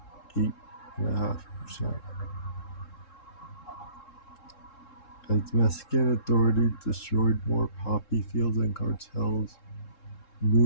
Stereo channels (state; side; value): late; right; 3.7 ms